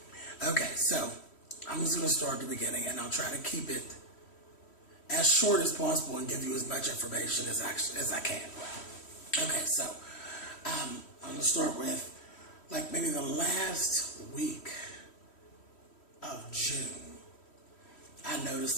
Okay, so I'm just going to start at the beginning, and I'll try to keep it as short as possible and give you as much information as I can. Okay, so I'm going to start with like maybe the last week of June. I noticed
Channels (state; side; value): late; right; 3.1 ms